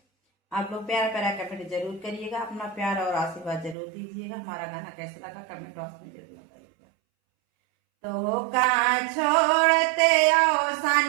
आप लोग प्यारा प्यारा कमेंट जरूर करिएगा, अपना प्यार और आशीर्वाद जरूर दीजिएगा। हमारा गाना कैसा लगा कमेंट बॉक्स में जरूर बताइएगा। तो का छोड़ते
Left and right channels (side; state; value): left; drops out; at 3.8 s